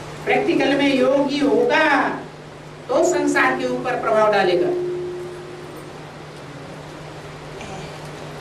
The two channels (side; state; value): both; identical; correlation 1.00